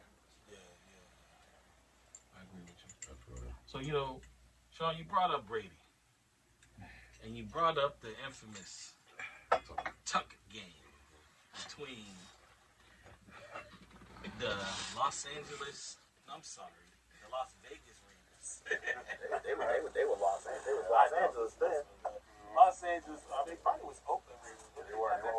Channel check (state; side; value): identical; both; correlation 1.00